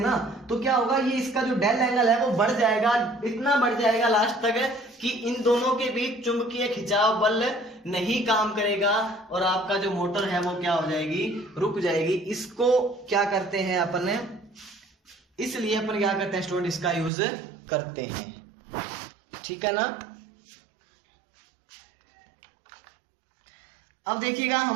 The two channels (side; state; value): left; drops out; at 17.1 s